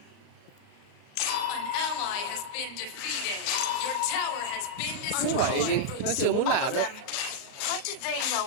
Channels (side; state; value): right; late; 38 ms